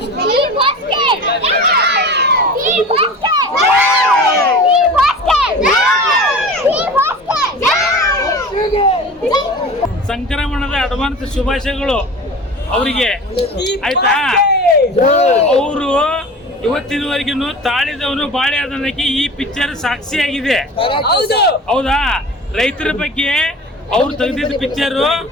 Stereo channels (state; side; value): normal; both; correlation 0.37